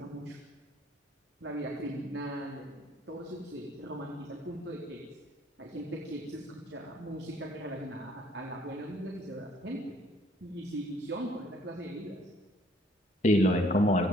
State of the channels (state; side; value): normal; both; correlation 0.61